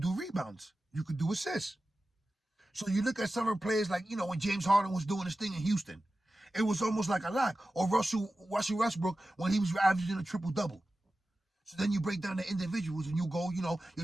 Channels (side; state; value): both; normal; correlation 0.94